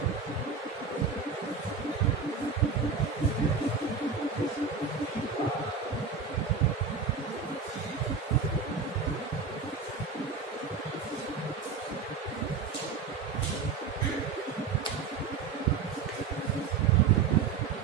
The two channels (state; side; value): quieter; left; 5.5 dB